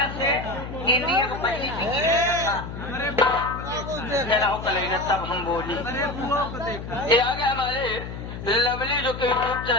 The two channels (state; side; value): noise; left; hum, 9 dB below the sound